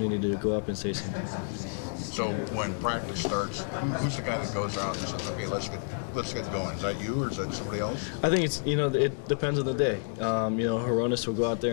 to go up and say something. So when practice starts, who's the guy that goes out and says, "Okay, let's get going"? Is that you or is that somebody else? I think it's, you know, it depends on the day. You know, Horonis will go out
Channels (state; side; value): silent; right; digital silence